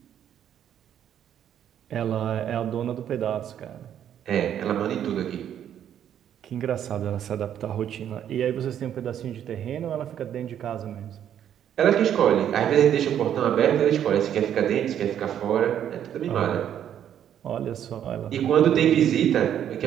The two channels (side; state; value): left; quieter; 9.9 dB